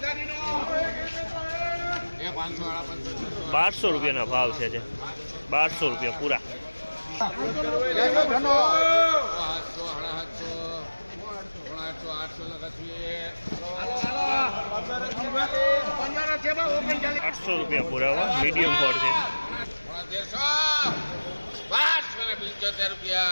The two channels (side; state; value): both; inverted; correlation -1.00